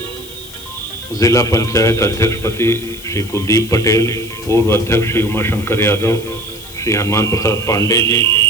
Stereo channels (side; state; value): left; noise; hiss, 17 dB below the sound